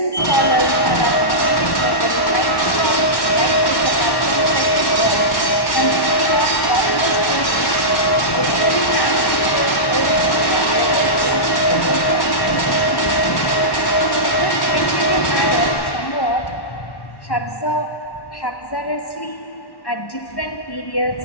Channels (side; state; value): right; late; 1.1 ms